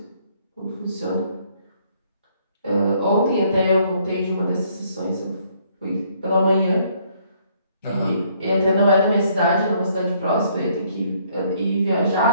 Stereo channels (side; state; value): both; inverted; correlation -0.66